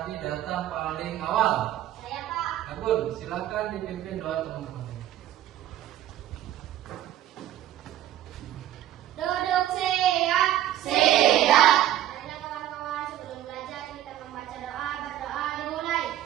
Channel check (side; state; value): left; quieter; 12.8 dB